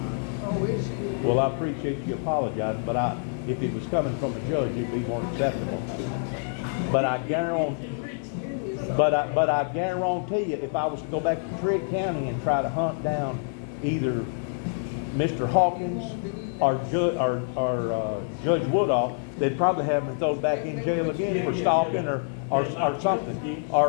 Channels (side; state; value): right; silent; digital silence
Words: Oh, is she? Well, I appreciate you apologizing, but if it was coming from a judge, it'd be more acceptable. But I guarantee, but I guarantee you, if I was to go back to Trigg County and try to hunt down either Mr. Hawkins or Judge Woodall, they'd probably have me thrown back in jail again for stalking or something,